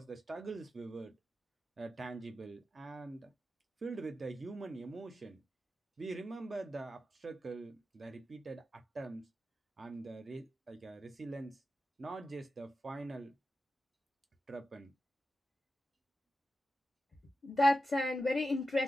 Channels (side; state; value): both; normal; correlation 0.90